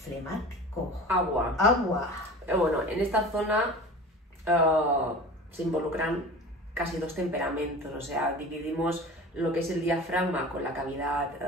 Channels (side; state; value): both; normal; correlation 0.37